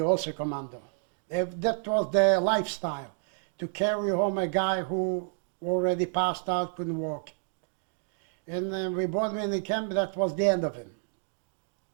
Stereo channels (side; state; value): left; silent; digital silence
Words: also commando. That was their lifestyle, to carry home a guy who already passed out, couldn't walk. And we brought him in the camp. That was the end of him.